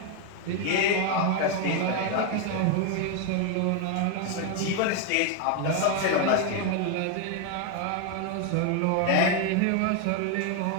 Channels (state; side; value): different; both; correlation 0.01